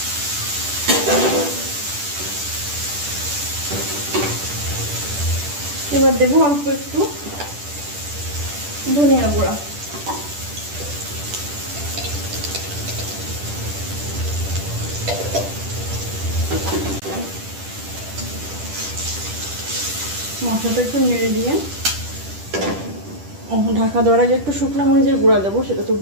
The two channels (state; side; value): late; left; 10 ms